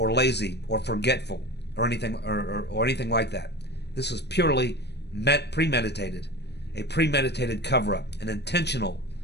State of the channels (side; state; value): right; late; 0.49 ms